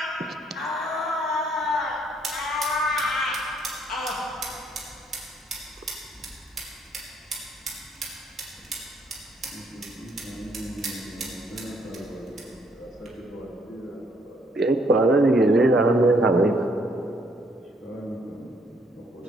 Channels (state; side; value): normal; both; correlation 0.68